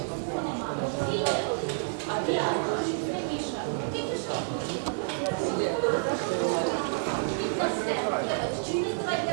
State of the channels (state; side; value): silent; left; digital silence